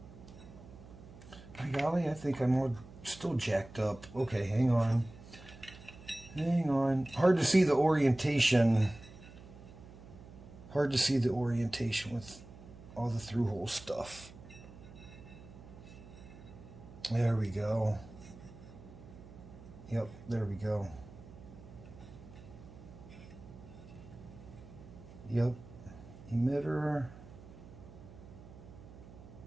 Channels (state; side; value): noise; right; hum, 17 dB below the sound